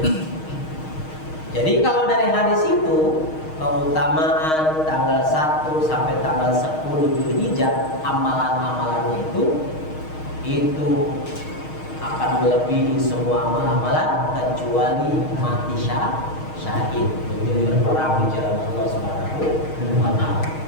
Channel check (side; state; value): right; late; 6.4 ms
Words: Jadi kalau dari hadis itu keutamaan tanggal 1 sampai tanggal 10 Dzulhijjah, amalan-amalannya itu akan melebihi semua amalan kecuali mati syahid, menjadi berperang di jalan Allah Subhanahu wa taala.